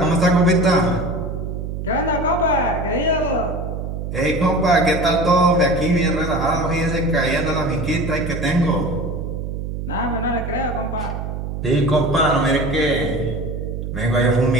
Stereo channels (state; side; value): noise; right; hum, 5 dB below the sound